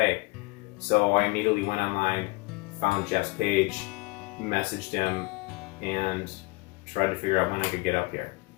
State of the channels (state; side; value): quieter; right; 24.9 dB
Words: So I immediately went online, found Jeff's page, messaged him, and tried to figure out when I could get up here.